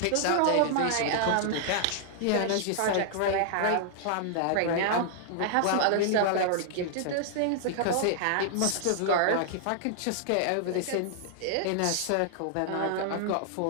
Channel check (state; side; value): different; both; correlation -0.01